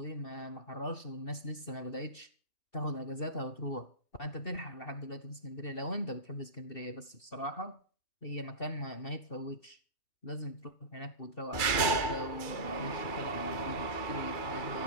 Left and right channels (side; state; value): right; late; 2.3 ms